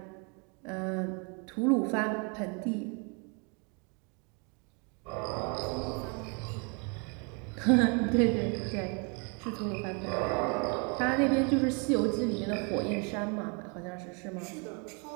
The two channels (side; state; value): left; quieter; 34.7 dB